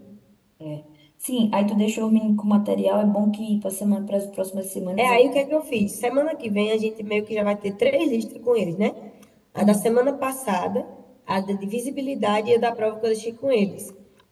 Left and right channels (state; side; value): identical; both; correlation 1.00